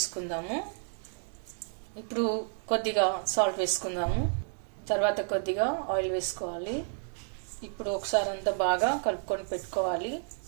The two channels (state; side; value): silent; left; 57 dB below the other